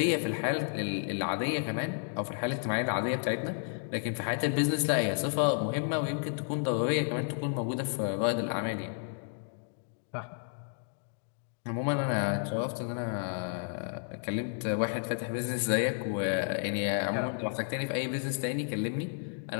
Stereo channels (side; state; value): right; silent; 57 dB below the other